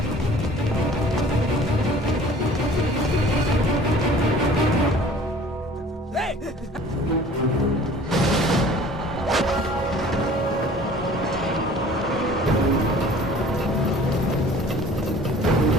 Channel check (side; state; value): both; normal; correlation 0.48